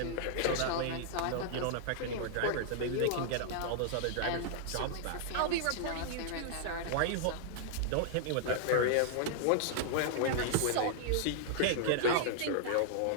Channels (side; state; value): both; different; correlation -0.01